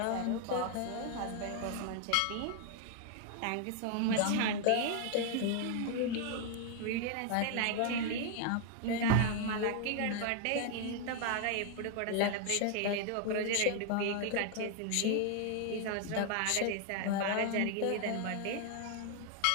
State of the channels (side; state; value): both; different; correlation 0.00